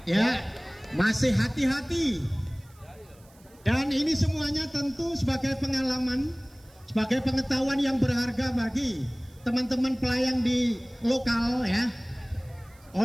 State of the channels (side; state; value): right; noise; hiss, 29 dB below the sound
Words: ya, masih hati-hati. Dan ini semuanya tentu sebagai pengalaman, sebagai pengetahuan yang berharga bagi teman-teman pelayang di lokal ya,